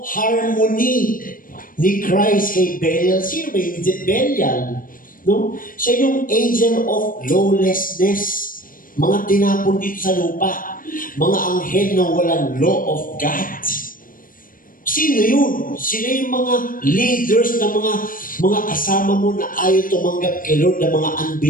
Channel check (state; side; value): late; right; 0.40 ms